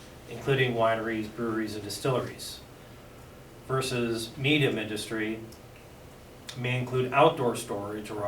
including wineries, breweries, and distilleries. Versus medium industry may include outdoor storage or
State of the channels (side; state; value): both; identical; correlation 1.00